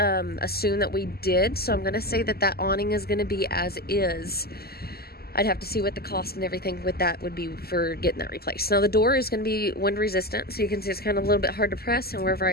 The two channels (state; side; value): late; right; 0.45 ms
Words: that we did, so I'm going to say that that awning is going to be as is. I'd have to see what the cost and everything with that would be for getting that replaced. Now the door is going to be wind resistant, so you can see it's kind of a little bit hard to press, and wherever